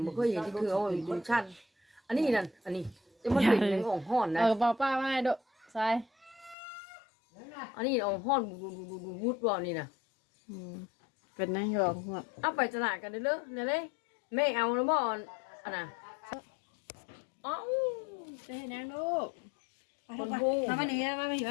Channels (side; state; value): right; drops out; at 6.6 s